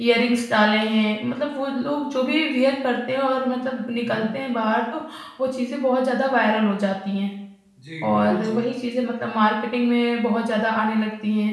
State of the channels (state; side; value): identical; both; correlation 1.00